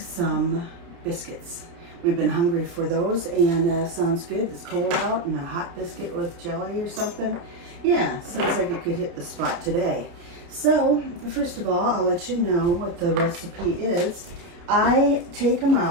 biscuits. We've been hungry for those, and sounds good. It's cold out, and a hot biscuit with jelly or something. Yeah, sounds like it could hit the spot today. So first of all, I'll let you know what the recipe is. I take them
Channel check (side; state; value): left; late; 29 ms